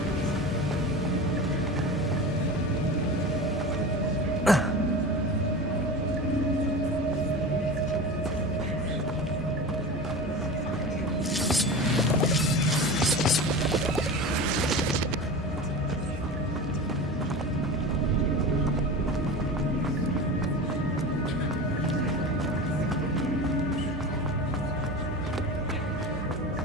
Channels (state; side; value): normal; both; correlation 0.30